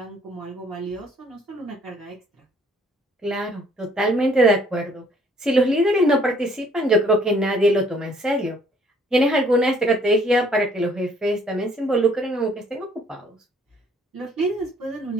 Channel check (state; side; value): normal; both; correlation 0.61